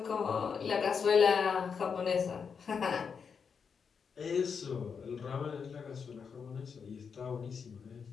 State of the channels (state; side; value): quieter; right; 6.2 dB